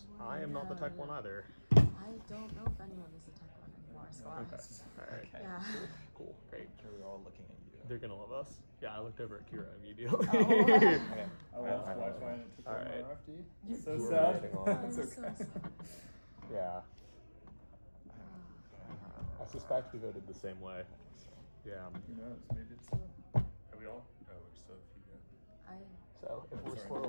I am not the tech one either. I don't know if anyone is a tech one anymore, so Okay. Alright. yeah. Cool. Great. We're all looking at you. They're gonna love us. Yeah, I looked over at Kira immediately. Oh. Okay. I lost Wi-Fi and it took All all my right. RFD. You- So You were sad. waiting on- I'm so sad. Yeah. I suspect we voted the same way. Yeah. Who knows? Maybe it's. Are we all? Oh, we're still a few go. I So if we're Sorry.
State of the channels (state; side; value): inverted; both; correlation -1.00